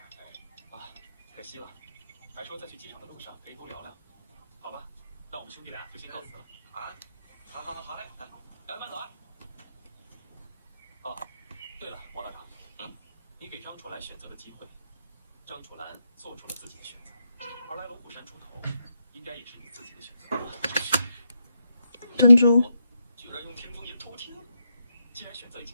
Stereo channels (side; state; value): both; inverted; correlation -0.83